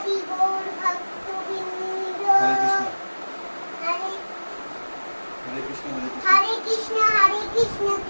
গৌর ভক্তবৃন্দ। হরে হরে কৃষ্ণ কৃষ্ণ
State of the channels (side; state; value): both; inverted; correlation -1.00